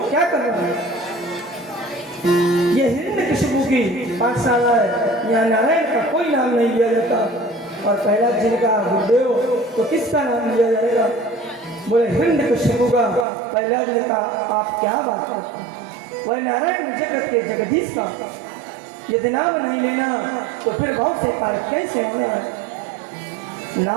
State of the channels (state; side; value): drops out; left; at 13.2 s